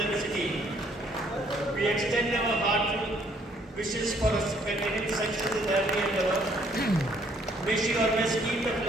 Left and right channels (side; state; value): both; normal; correlation 0.65